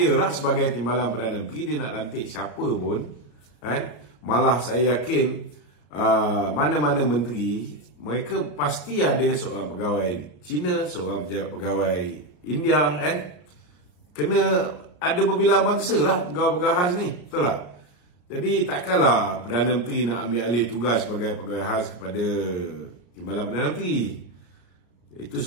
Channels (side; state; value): right; late; 33 ms